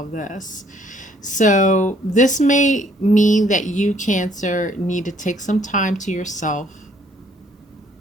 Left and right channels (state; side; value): normal; both; correlation 0.64